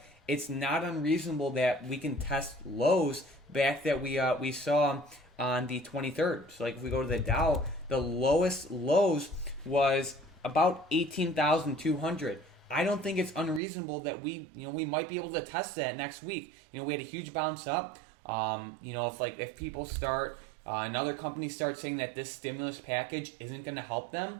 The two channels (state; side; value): drops out; left; at 13.6 s